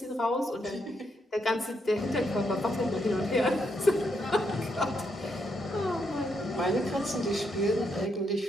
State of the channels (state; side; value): normal; both; correlation 0.78